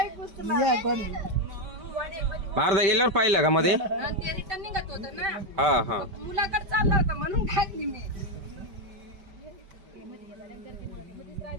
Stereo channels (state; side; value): late; left; 5.1 ms